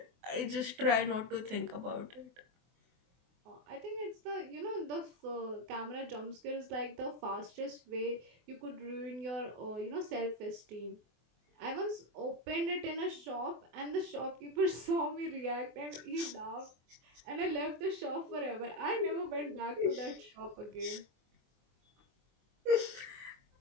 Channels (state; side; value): late; left; 24 ms